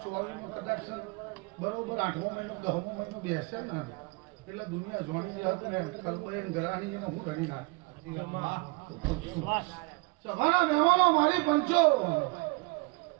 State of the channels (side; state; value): left; quieter; 26.9 dB